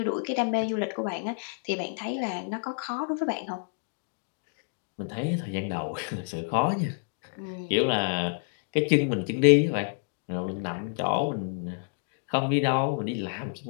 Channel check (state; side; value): silent; right; digital silence